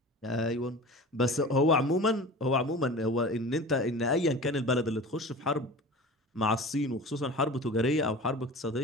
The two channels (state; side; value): normal; both; correlation 0.36